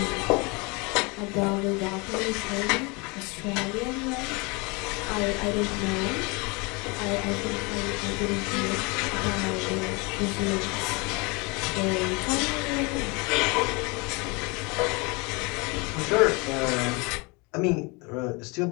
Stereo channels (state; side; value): quieter; right; 28.2 dB